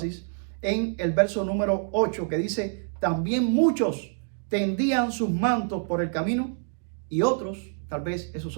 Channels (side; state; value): left; silent; 60 dB below the other